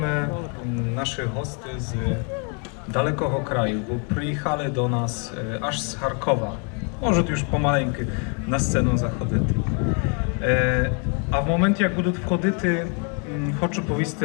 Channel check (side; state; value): right; quieter; 38.3 dB